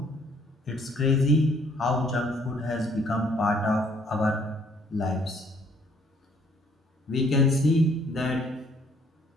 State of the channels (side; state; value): both; normal; correlation 0.64